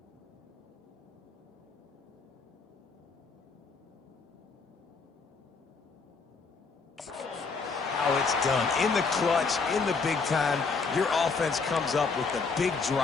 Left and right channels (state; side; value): quieter; right; 4.7 dB